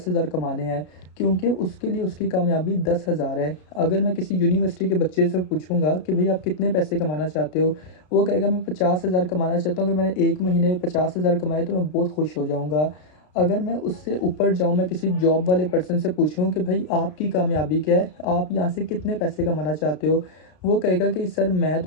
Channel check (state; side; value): late; right; 33 ms